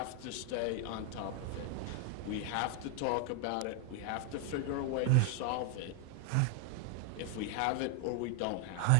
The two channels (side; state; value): both; different; correlation 0.00